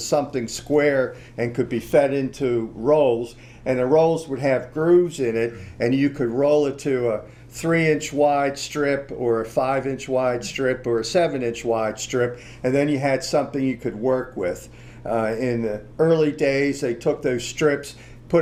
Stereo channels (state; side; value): identical; both; correlation 1.00